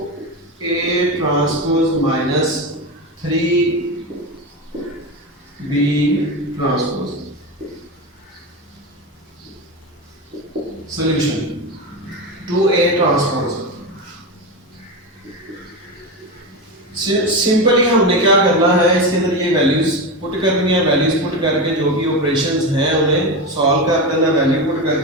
transpose minus 3b transpose. Solution 2a transpose. Simply हमने क्या करना है, इसके अंदर ये वैल्यूज पुट करनी है। वैल्यूज पुट करके जो भी ऑपरेशंस हैं उन्हें सॉल्व कर देना। वैल्यू पुट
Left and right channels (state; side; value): normal; both; correlation 0.19